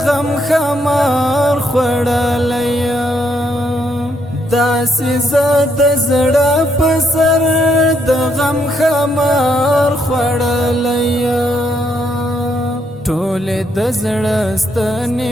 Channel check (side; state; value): both; normal; correlation 0.74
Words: غم خمار خوړلی یم داسې زه د زړه په سر د غم خمار خوړلی یم ټولې د زړه ستنې